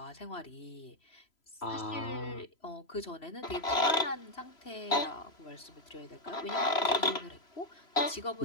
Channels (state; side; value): late; right; 3.0 ms